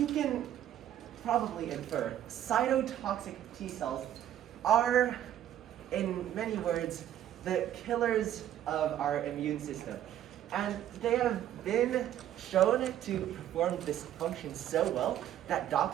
can probably infer, cytotoxic T cells are, in many words, the killers of our immune system. And they have been shown to perform this function so well that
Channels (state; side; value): quieter; left; 11.5 dB